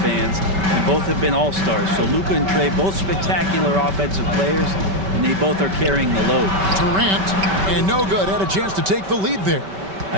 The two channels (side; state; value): left; late; 5.2 ms